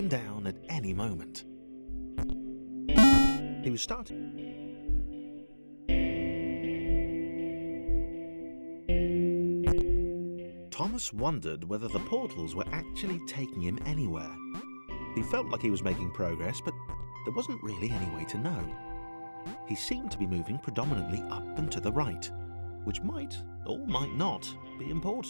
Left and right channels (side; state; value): both; inverted; correlation -1.00